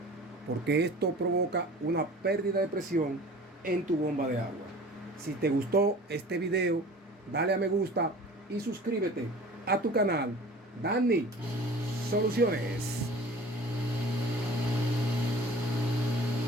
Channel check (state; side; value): normal; both; correlation 0.44